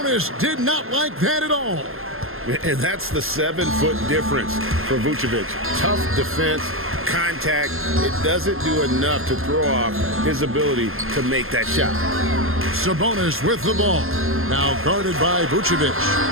did not like that at all. And that's the 7-foot difference for Vucevic. Tough defense, contact. It doesn't do enough to throw off his ability to make that shot. Sabonis with the ball. Now guarded by Vucevic.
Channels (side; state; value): left; late; 0.61 ms